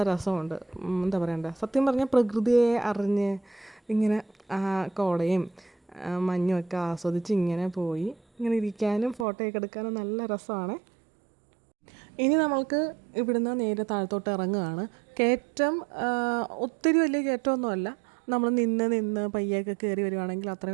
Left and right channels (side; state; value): left; drops out; at 9.2 s